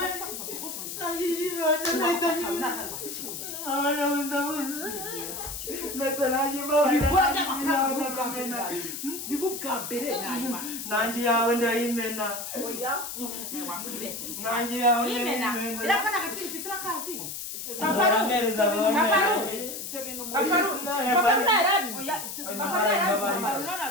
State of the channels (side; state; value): left; noise; hiss, 7 dB below the sound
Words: nanjye yawe ndayimena nanjye yawe ndayimena irafana agaciro ufite urakazi baramereza phone ibyo bintu